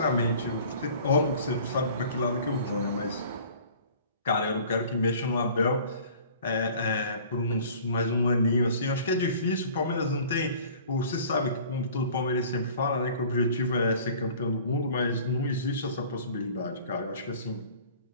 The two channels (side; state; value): both; inverted; correlation -0.48